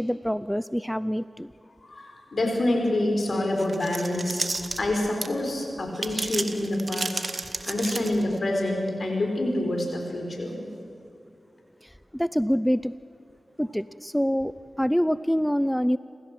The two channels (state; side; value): normal; both; correlation 0.96